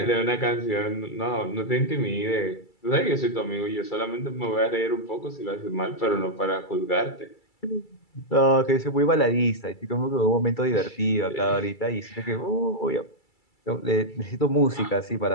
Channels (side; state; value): right; late; 2.3 ms